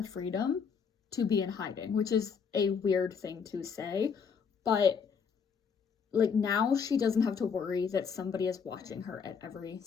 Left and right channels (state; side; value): quieter; right; 6.3 dB